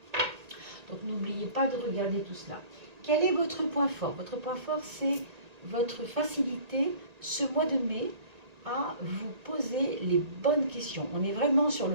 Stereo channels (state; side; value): late; left; 1.8 ms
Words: Donc, n'oubliez pas de regarder tout cela. Quel est votre point fort? Votre point fort, c'est votre facilité, ce mois de mai, à vous poser les bonnes questions. On est vraiment sur